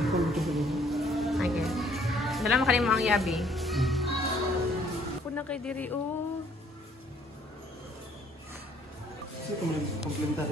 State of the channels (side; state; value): both; normal; correlation 0.62